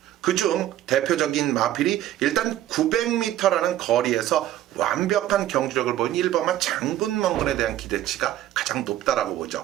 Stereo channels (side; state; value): left; quieter; 13.1 dB